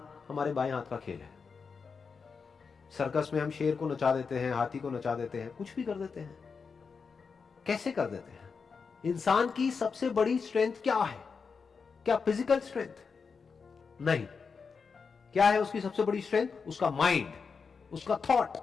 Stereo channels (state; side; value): quieter; right; 5.4 dB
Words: हमारे बाएं हाथ का खेल है। सर्कस में हम शेर को नचा देते हैं, हाथी को नचा देते हैं, कुछ भी कर देते हैं। कैसे कर देते हैं? इंसान की सबसे बड़ी स्ट्रेंथ क्या है? क्या फिजिकल स्ट्रेंथ? नहीं। क्या है उसकी सबसे बड़ी स्ट्रेंथ? उसका माइंड, उसका थॉट।